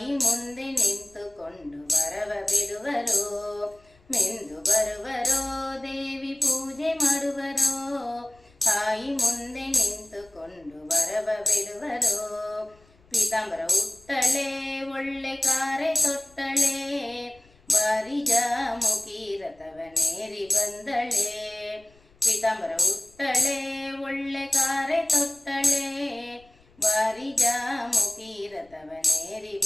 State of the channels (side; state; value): left; noise; rumble, 29 dB below the sound